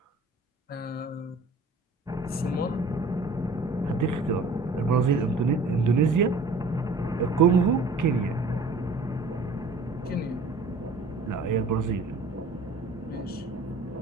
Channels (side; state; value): left; quieter; 3.4 dB